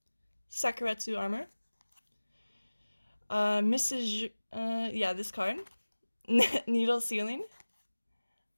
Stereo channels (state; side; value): inverted; both; correlation -1.00